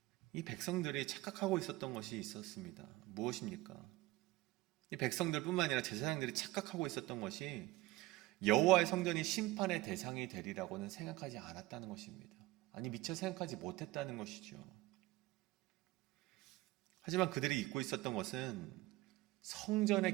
이 백성들이 착각하고 있었던 것이 있었습니다. 무엇입니까? 이 백성들뿐만 아니라 제사장들이 착각하고 있었던 것이 여호와의 성전이 심판의 대상이 되리라고는 생각하지 않았다는 것입니다. 아니, 미처 생각하지 못했다는 것이죠. 하지만 그들이 잊고 있었던 것은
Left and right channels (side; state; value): left; quieter; 19.0 dB